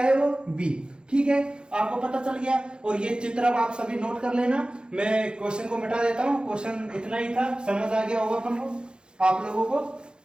है वो, बी, ठीक है। आपको पता चल गया। और ये चित्र अब आप सभी नोट कर लेना। मैं क्वेश्चन को मिटा देता हूं। क्वेश्चन इतना ही था, समझ आ गया होगा अपन को, आप लोगों को।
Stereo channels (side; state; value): left; late; 0.050 ms